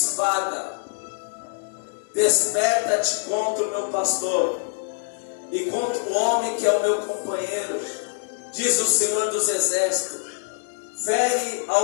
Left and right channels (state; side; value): silent; right; digital silence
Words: desperta-te contra o meu pastor e contra o homem que é o meu companheiro, diz o Senhor dos Exércitos. Fere